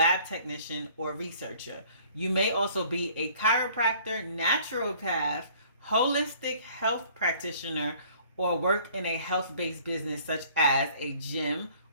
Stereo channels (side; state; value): both; inverted; correlation -0.55